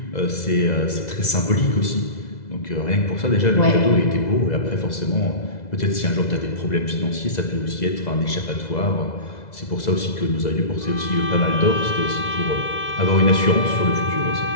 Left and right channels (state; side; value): late; right; 2.0 ms